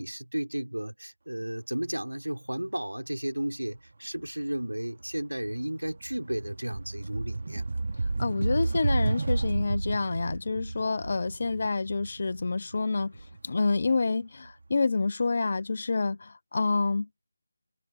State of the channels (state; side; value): inverted; both; correlation -0.95